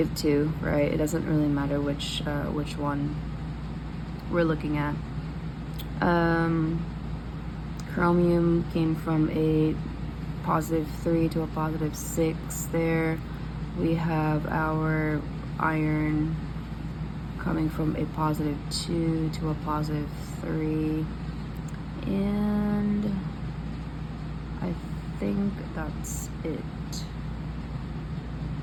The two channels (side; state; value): both; identical; correlation 1.00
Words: right? It doesn't really matter which one we're looking at. Chromium came from a +3 to a +6 there. We have our iron coming from a +2 to a +3, and I think that's it.